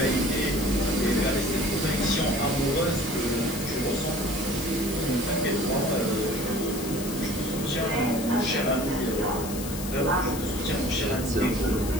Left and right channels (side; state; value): left; noise; hiss, 10 dB below the sound